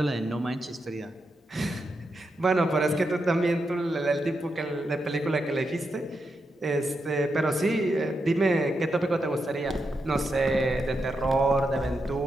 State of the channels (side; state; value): both; normal; correlation 0.85